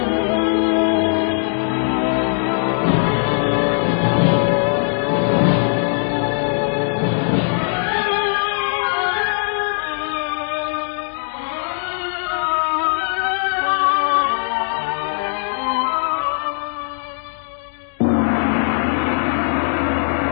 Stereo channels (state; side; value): silent; right; digital silence